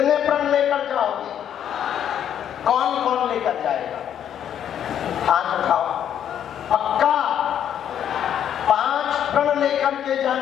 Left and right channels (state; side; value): quieter; right; 9.6 dB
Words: प्रण लेकर जाओगे? कौन कौन लेकर जाएगा? हाथ उठाओ। पक्का 5 प्रण करके